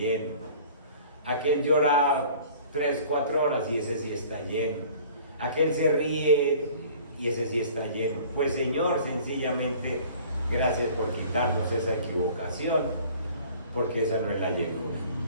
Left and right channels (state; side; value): inverted; both; correlation -0.48